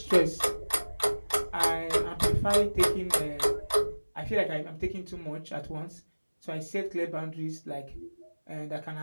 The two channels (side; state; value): both; inverted; correlation -1.00